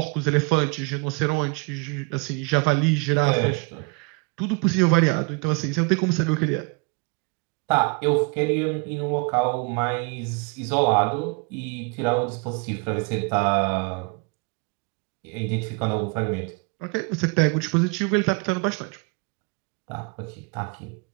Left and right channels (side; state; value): left; quieter; 31.4 dB